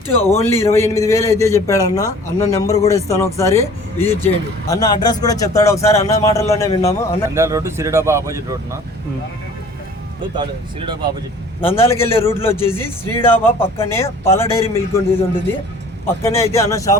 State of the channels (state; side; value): normal; both; correlation 0.49